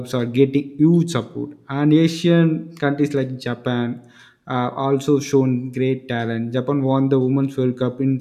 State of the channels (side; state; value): both; identical; correlation 1.00